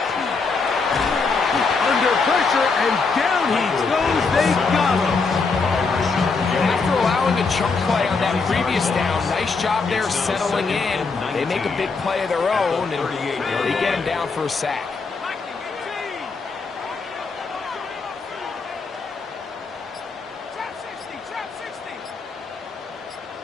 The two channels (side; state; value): right; quieter; 4.5 dB